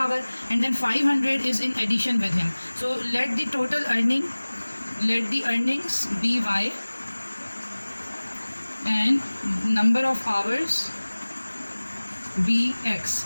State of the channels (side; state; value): both; inverted; correlation -1.00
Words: and then 500 is in addition with him. So let the earnings be y and number of hours be x.